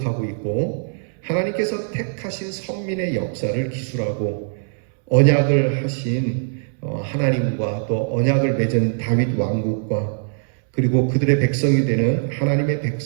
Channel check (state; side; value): silent; left; 65 dB below the other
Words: 있고 하나님께서 택하신 선민의 역사를 기술하고 언약을 하신 하나님과 또 언약을 맺은 다윗 왕국과 그리고 그들의 백성이 되는 하나님의